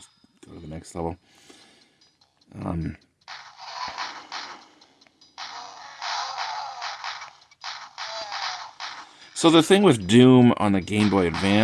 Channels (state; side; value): identical; both; correlation 1.00